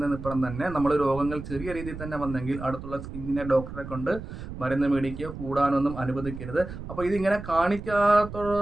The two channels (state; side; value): noise; right; rumble, 10 dB below the sound